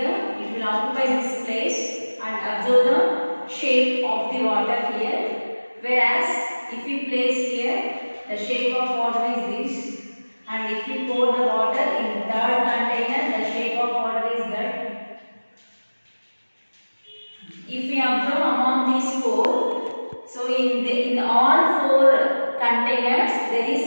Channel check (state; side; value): inverted; both; correlation -1.00